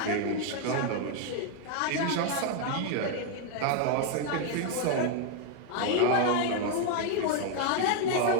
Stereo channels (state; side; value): different; both; correlation 0.00